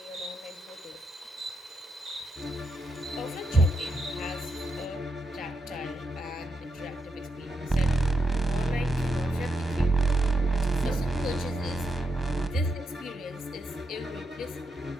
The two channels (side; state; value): both; normal; correlation 0.83